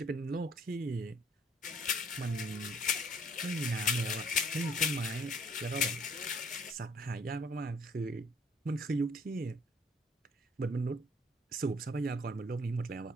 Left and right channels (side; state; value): both; normal; correlation 0.60